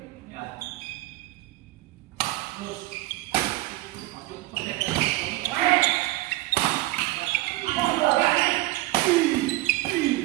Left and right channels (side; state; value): left; quieter; 18.9 dB